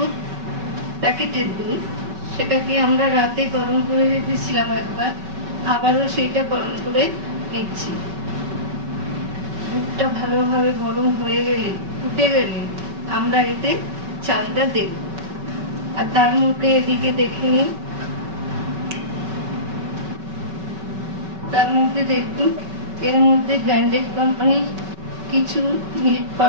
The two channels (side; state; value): left; late; 5.3 ms